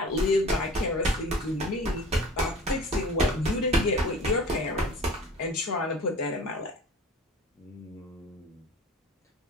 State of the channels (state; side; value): normal; both; correlation 0.42